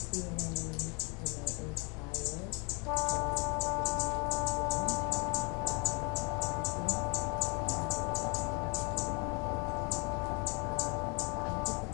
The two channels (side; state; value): right; quieter; 32.2 dB